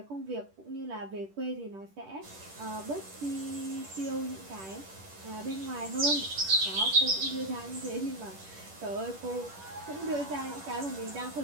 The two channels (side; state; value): left; late; 10 ms